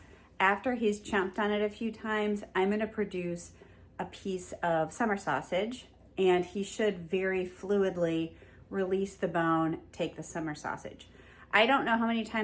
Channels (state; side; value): identical; both; correlation 1.00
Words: After he's chomped on it a few times, I'm gonna produce a piece of summer sausage, and he should very fluidly release the bone, take the summer sausage. I don't know how many